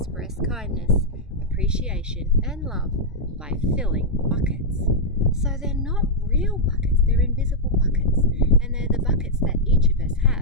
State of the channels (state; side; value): normal; both; correlation -0.04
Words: kindness, appreciation and love by filling buckets. So they're not real buckets, they're invisible buckets, and they're the buckets that each of us